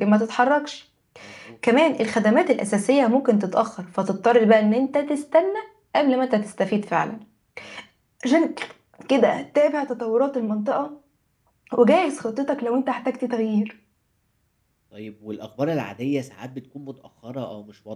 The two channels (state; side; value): identical; both; correlation 1.00